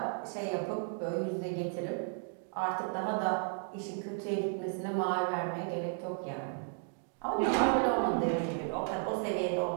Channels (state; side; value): silent; left; 55 dB below the other